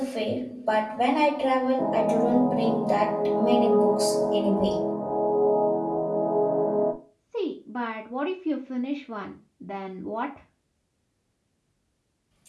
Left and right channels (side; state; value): both; identical; correlation 1.00